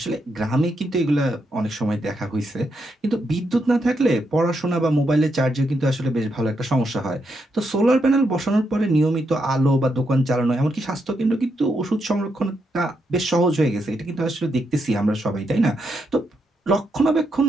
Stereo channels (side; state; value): both; normal; correlation 0.81